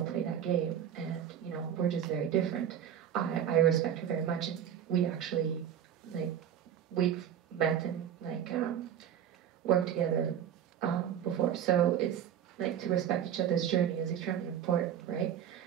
play that game. And, we're just very different. I respect her very much, and we actually, we've met and, worked together before. So it's, to respect each other's journey is extremely important, right?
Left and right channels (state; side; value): quieter; left; 9.4 dB